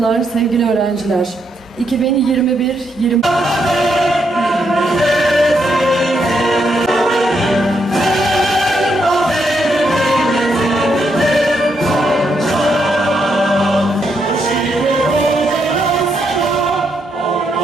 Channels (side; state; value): both; normal; correlation 0.78